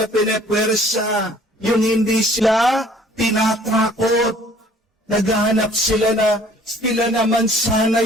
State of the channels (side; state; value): both; normal; correlation 0.55